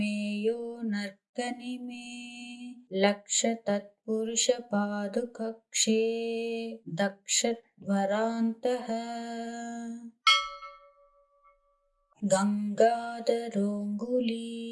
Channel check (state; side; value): identical; both; correlation 1.00